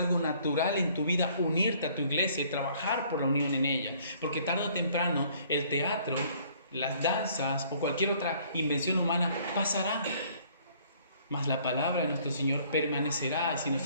natural en tu vida unirte a tu iglesia y trabajar por la unión en ella. Porque tarde o temprano el teatro, las danzas o cualquier otra invención humana pasará. Mas la palabra de nuestro Señor permanecerá. Si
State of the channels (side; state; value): both; inverted; correlation -0.60